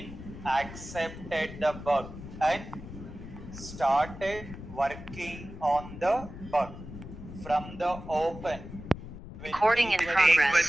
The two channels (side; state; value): left; noise; rumble, 12 dB below the sound